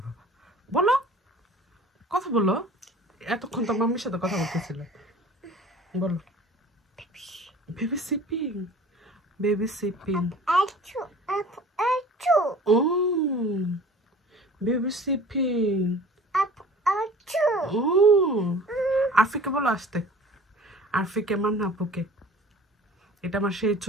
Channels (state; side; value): normal; both; correlation 0.45